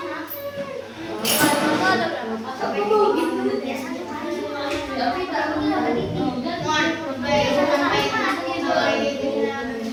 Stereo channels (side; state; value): both; identical; correlation 1.00